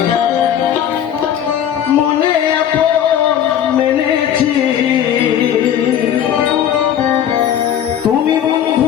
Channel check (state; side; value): quieter; right; 9.9 dB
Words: মনে আপন মেনেছি, তুমি